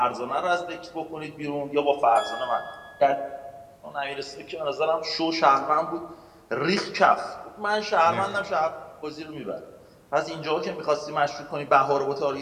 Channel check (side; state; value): both; identical; correlation 1.00